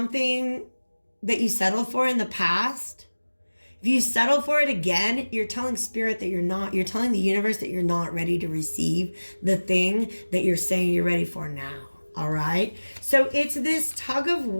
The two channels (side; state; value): both; inverted; correlation -1.00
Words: that you settled for in the past, if you settle for it again, you're telling spirit that you're telling the universe that you're not ready to receive the thing that you're saying you're ready for now. All right. So it's this tug of